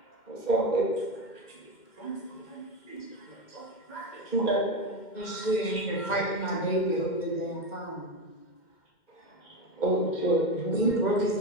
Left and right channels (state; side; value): late; right; 2.1 ms